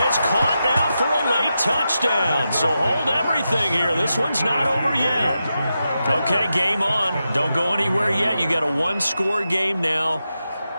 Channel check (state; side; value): inverted; both; correlation -0.89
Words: caught now for a late touchdown. So hold everything here. This one's not over yet. Okay, game on. Don't go anywhere yet. You got a one-score game now.